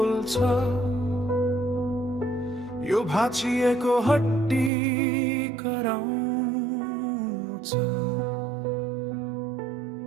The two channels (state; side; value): drops out; left; at 4.7 s